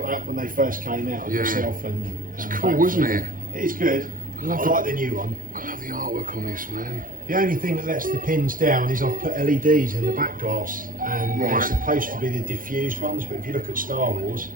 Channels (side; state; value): left; late; 0.40 ms